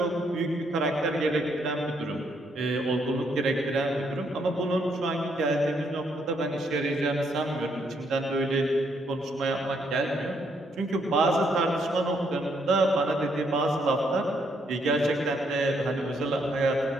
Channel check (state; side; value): normal; both; correlation 0.73